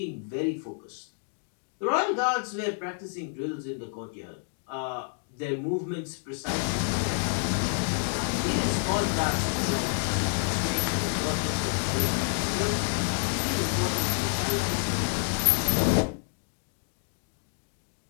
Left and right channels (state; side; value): silent; right; 59 dB below the other